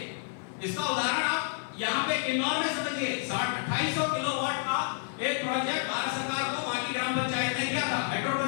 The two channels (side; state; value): right; silent; 58 dB below the other